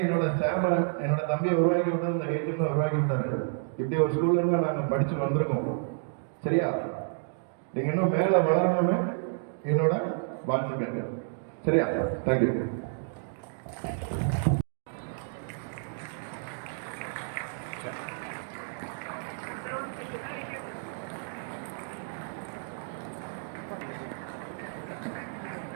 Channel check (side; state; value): left; silent; digital silence